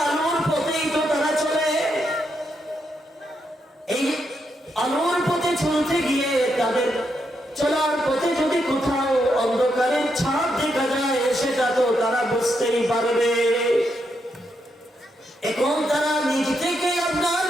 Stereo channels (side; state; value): both; normal; correlation 0.81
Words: আলোর পথেই তো তারা চলে। এই আলোর পথে চলতে গিয়ে তাদের চলার পথে যদি কোথাও অন্ধকারের ছাপ দেখা যায় সেটা তো তারা বুঝতেই পারবে। এখন তারা নিজ থেকে আপনার